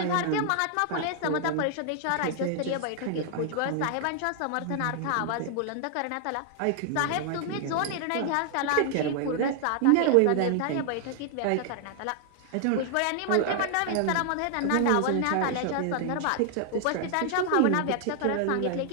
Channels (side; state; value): both; different; correlation 0.00